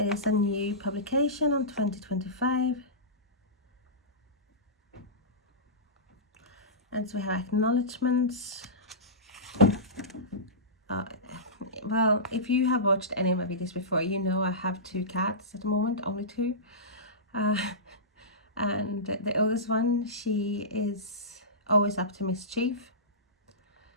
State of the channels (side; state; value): both; normal; correlation -0.20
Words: is a new publication on 2025. And so we have acknowledgements. Well, if you have watched any of my videos before, you know I have 2 cats at the moment, only 2. And the oldest one, she is always up to mischief.